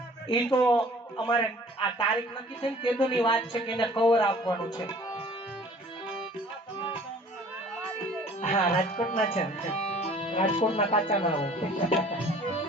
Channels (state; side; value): normal; both; correlation 0.51